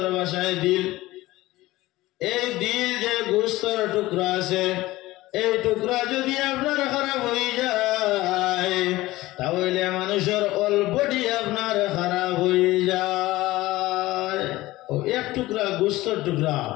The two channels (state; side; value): quieter; right; 18.1 dB